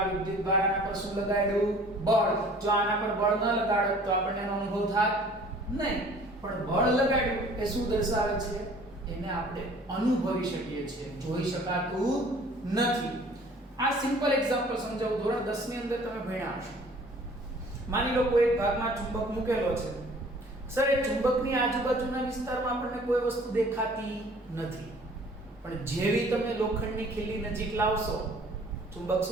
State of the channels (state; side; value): normal; both; correlation 0.51